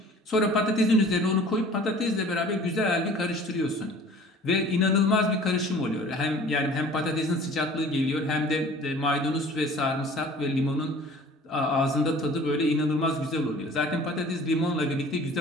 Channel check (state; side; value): normal; both; correlation 0.48